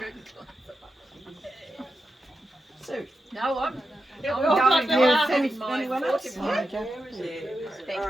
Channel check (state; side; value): normal; both; correlation 0.89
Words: glass. Sue. No, I'm Yeah, I'm we're all going got to the having my anyone else? 41. Okay.